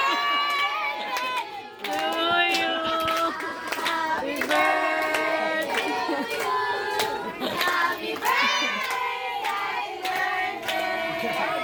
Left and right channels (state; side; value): identical; both; correlation 1.00